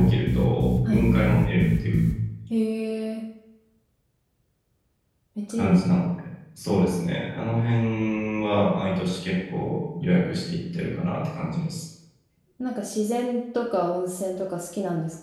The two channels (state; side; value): identical; both; correlation 1.00